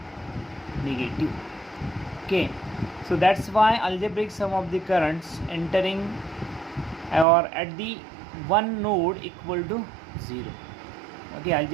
negative. Okay, so that's why algebraic sum of the currents entering or at the one node equal to 0. Okay,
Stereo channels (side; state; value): left; drops out; at 7.2 s